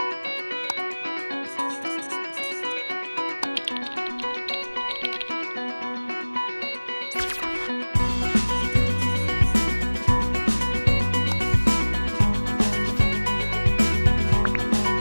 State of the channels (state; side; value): inverted; both; correlation -1.00